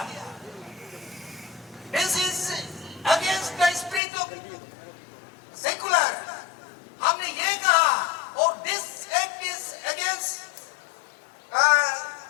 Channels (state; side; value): drops out; right; at 4.0 s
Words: this is against the spirit of secular. हमने ये कहा और this act is against the